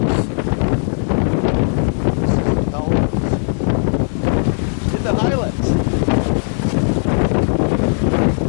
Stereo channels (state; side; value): silent; right; 68 dB below the other